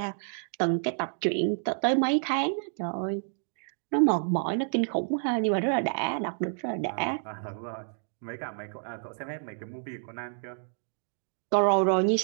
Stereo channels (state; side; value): silent; left; digital silence